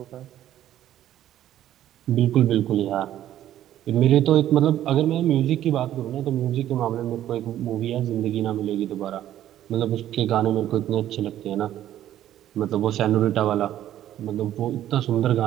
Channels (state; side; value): quieter; left; 12.2 dB